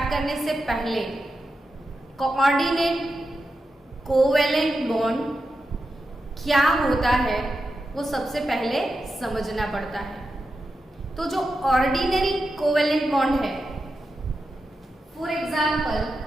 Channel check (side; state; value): both; normal; correlation 0.89